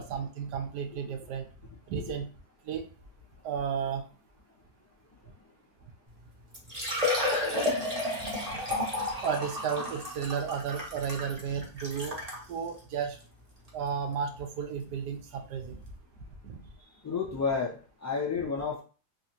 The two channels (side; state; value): left; late; 1.8 ms